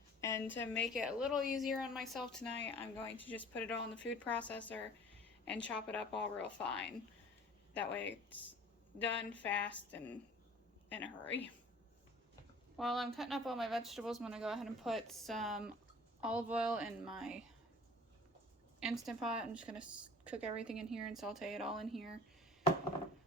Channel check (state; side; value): normal; both; correlation 0.46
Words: and to make it a little easier on myself tonight, I'm going to just put it all in the food processor and chop it up all real fine. That way it's done fast and in a hurry. While I'm cutting up all my vegetables, I'm going to go ahead and put some olive oil in my Instant Pot. I'm just going to cook everything in here and saute it all in here.